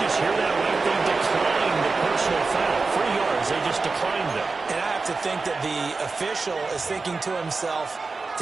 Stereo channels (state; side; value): quieter; left; 4.1 dB